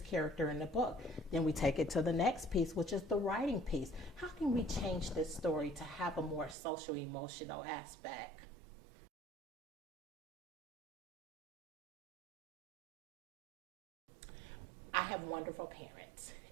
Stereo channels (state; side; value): drops out; left; at 6.6 s